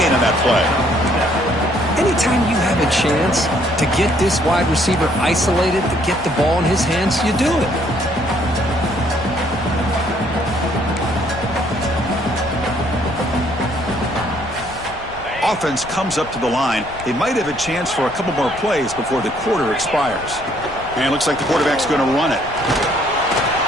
on that play. Anytime you have a chance to get this wide receiver isolated, to get the ball in his hands, you do it. Offense comes up to the line. They might have a chance for a couple more plays before the quarter expires. And it looks like the quarterback's going to run it.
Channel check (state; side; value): noise; left; rumble, 17 dB below the sound